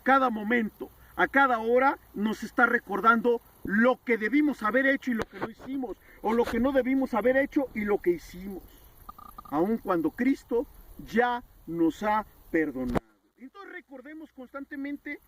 momento, a cada hora, nos está recordando lo que debimos haber hecho y lo que no hicimos, o lo que no debimos haber hecho y lo que hicimos, aun cuando Cristo ya nos ha perdonado. Entonces recordemos constantemente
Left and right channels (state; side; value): identical; both; correlation 1.00